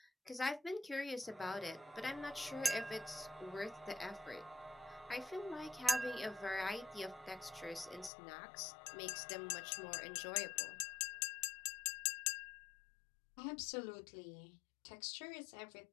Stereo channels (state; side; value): drops out; right; at 8.1 s